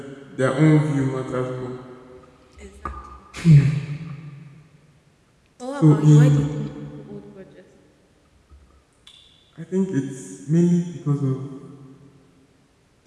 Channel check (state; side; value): identical; both; correlation 1.00